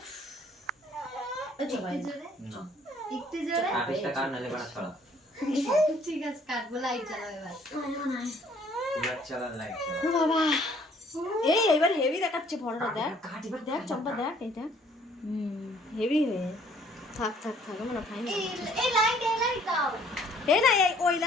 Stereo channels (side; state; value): both; normal; correlation 0.60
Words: একটু জোরে। একটু জোরে। আবেশটা কার নালে বাড়া ছড়া। ঠিক আছে কাটবো লাইট জ্বালাও এবার। কুলার চালা লাইট চালা। ও বাবা এই এবার হেভি দেখাচ্ছে ফটোটা দেখ দেখ চম্পা দেখ এইটা হেভি হয়ে থাক থাক থাক মানে ফাইন এই লাইট দাও। এই না এই ওই